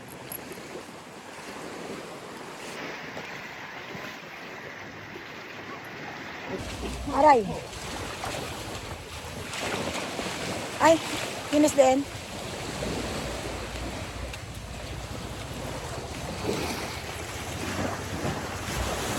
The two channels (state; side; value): identical; both; correlation 1.00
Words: Aray! Ay, Yunus din.